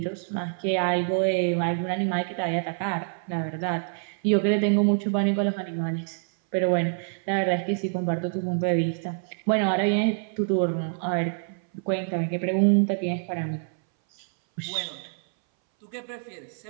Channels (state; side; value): silent; left; 59 dB below the other